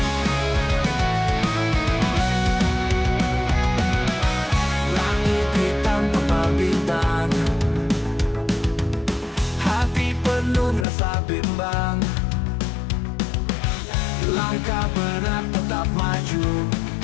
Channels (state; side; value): drops out; right; at 10.9 s